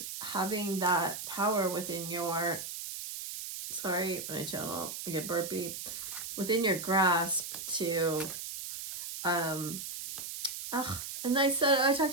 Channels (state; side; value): noise; right; hiss, 7 dB below the sound